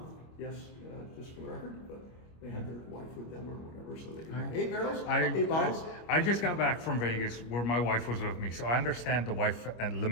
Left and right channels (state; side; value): late; right; 25 ms